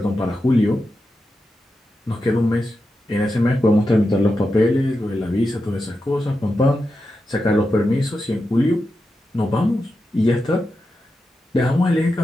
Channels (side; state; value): both; normal; correlation 0.89